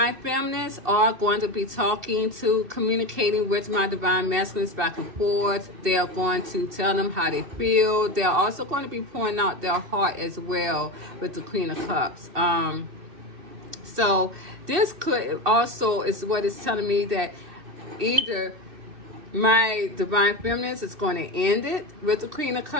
feminines are going to be communicating with my divine masculines back and forth. They are going to tell them how they feel. They are also going to be pouring out their heart as well with the Queen of Cups. So this could also is what it's telling me, that either my divine feminines is going to end it with the Queen of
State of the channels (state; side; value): late; left; 2.7 ms